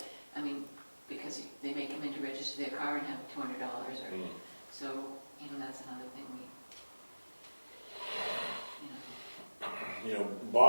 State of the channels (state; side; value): inverted; both; correlation -1.00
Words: I mean, because they may come in to register their car and have $200 or, so, you know, that's another thing we, you know,